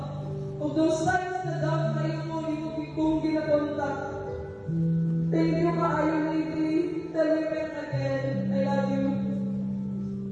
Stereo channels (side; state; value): both; identical; correlation 1.00